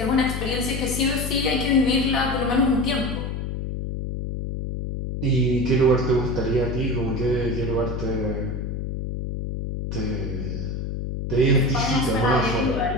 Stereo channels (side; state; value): left; noise; hum, 4 dB below the sound